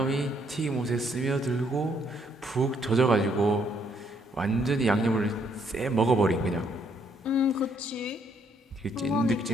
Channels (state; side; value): normal; both; correlation 0.70